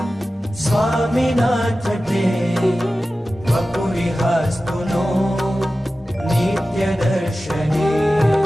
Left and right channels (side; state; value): both; normal; correlation 0.95